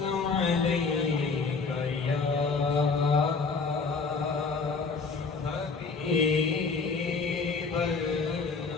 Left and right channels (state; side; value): quieter; right; 4.6 dB